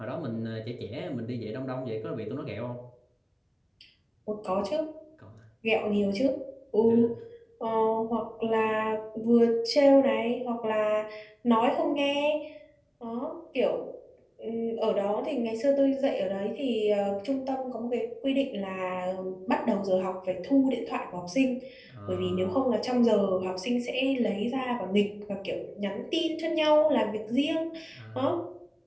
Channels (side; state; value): both; identical; correlation 1.00